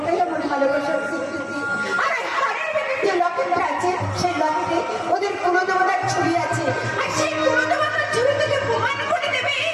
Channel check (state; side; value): identical; both; correlation 1.00